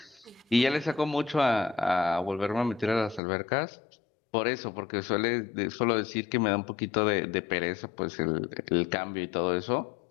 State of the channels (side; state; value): right; drops out; at 3.2 s